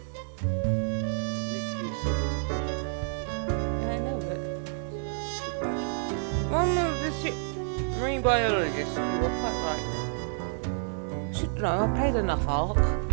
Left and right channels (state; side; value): silent; left; 58 dB below the other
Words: Marine biologist, you were quite right. Should know, I've played enough Ark.